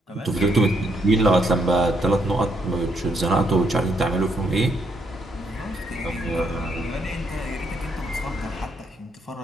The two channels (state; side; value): normal; both; correlation 0.75